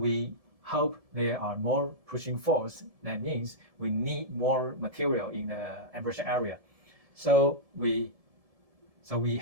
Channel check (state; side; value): late; left; 1.7 ms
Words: hope there are more pushing force. That means we need more material in the embrasure area. So we